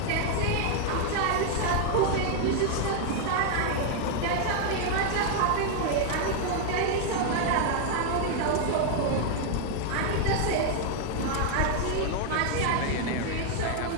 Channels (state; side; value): different; both; correlation 0.00